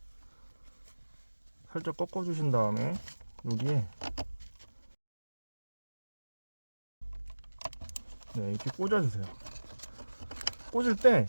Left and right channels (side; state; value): both; inverted; correlation -1.00